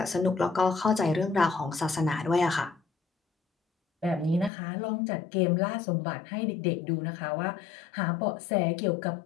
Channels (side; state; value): right; drops out; at 4.5 s